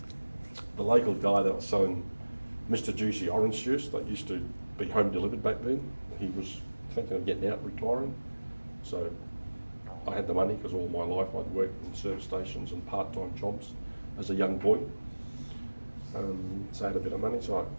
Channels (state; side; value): inverted; both; correlation -1.00